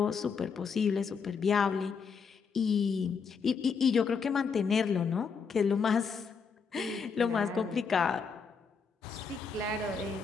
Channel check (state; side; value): quieter; right; 5.7 dB